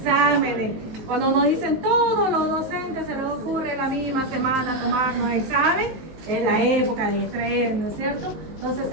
Cuando nos dicen todos los docentes se les ocurre la misma semana tomarnos examen, es la época de estrés, ¿no es cierto? Entonces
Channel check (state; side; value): late; left; 18 ms